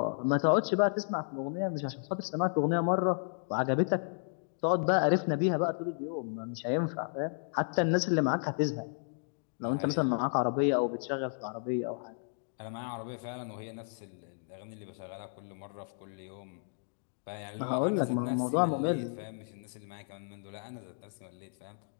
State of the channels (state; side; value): silent; right; digital silence